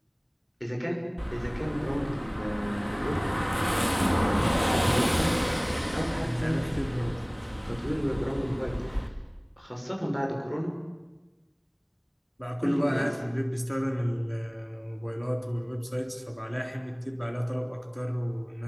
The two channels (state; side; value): identical; both; correlation 1.00